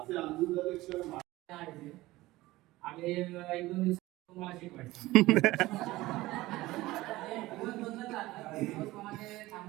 आनंदाचे क्षण आणि 1-2 दिवस तुम्हाला शिकवायचं.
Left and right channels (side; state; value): left; quieter; 18.3 dB